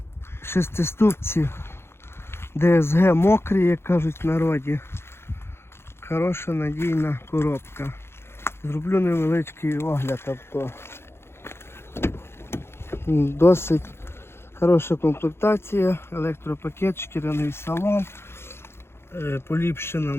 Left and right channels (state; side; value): late; right; 0.12 ms